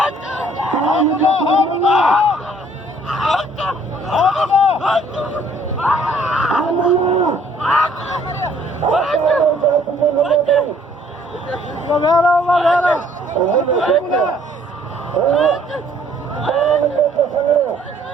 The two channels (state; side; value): normal; both; correlation 0.60